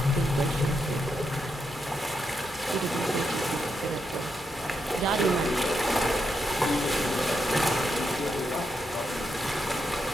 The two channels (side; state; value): both; normal; correlation 0.83